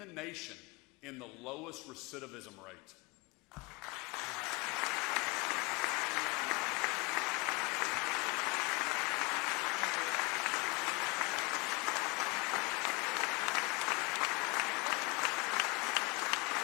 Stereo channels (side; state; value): right; quieter; 27.1 dB